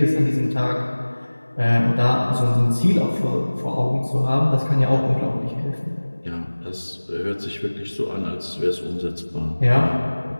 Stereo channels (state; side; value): inverted; both; correlation -1.00